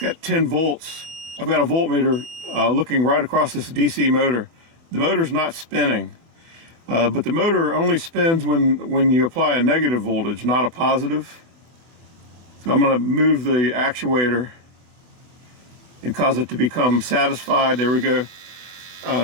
10 volts. I've got a voltmeter looking right across this DC motor. The motor's not spinning, but the motor only spins when you apply a negative voltage, not a positive. So I'm going to move the actuator and cause it to become satisfied. There we go.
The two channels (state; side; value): late; left; 24 ms